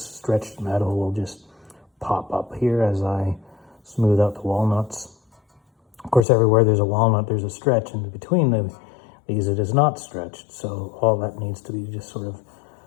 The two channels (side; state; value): right; drops out; at 6.2 s